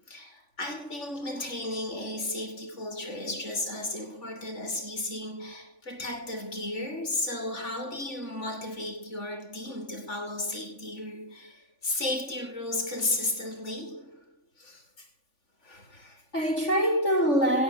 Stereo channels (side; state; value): right; late; 3.5 ms